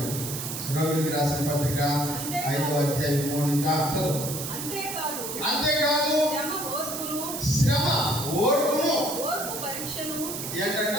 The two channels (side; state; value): right; noise; hiss, 6 dB below the sound